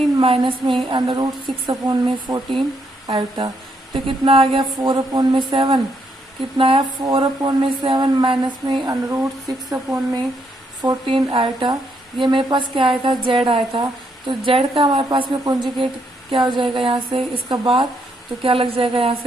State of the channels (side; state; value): both; normal; correlation 0.75